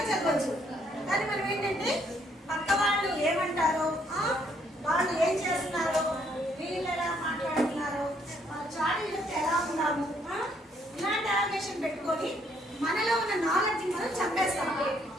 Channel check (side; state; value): both; normal; correlation 0.69